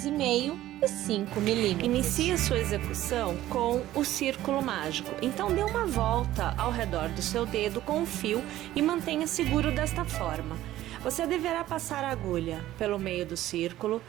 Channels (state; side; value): quieter; left; 14.4 dB